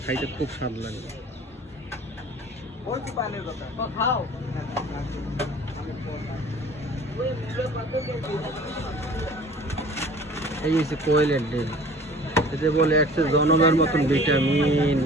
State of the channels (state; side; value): normal; both; correlation 0.46